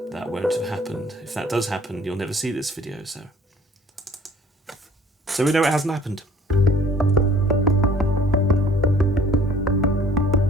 that won't have happened. If that does happen, you'll never see this video, so we know it hasn't happened.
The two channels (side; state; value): both; normal; correlation 0.53